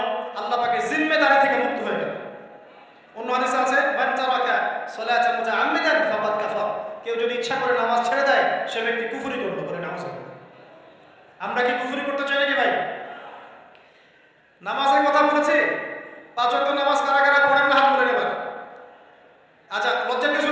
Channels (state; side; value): identical; both; correlation 1.00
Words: আল্লাহ পাকের জিম্মেদারি থেকে মুক্ত হয়ে গেল। অন্য হাদিসে আছে মান তারাকা সালাতান মুতাআম্মিদান ফাকাদ কাফার। কেউ যদি ইচ্ছা করে নামাজ ছেড়ে দেয়, সে ব্যক্তি কুফরি করলো, বলে নামাজ। আমরা কি কুফরি করতে চাই নাকি ভাই? নামাজের কথা বলেছি, 5 ওয়াক্ত নামাজ কারা কারা পড়েন না হাত তুলে নেবেন। আচ্ছা, লজ্জার কিছু